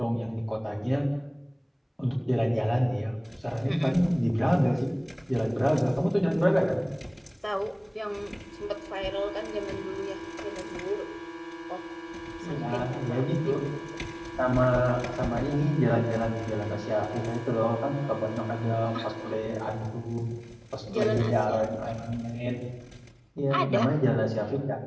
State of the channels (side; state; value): both; identical; correlation 1.00